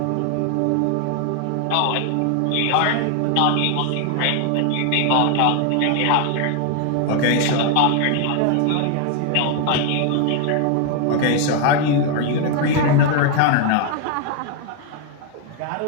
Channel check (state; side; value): different; both; correlation 0.00